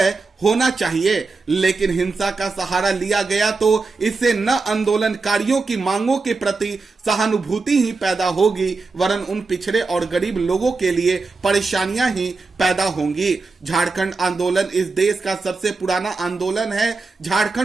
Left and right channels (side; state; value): left; quieter; 4.0 dB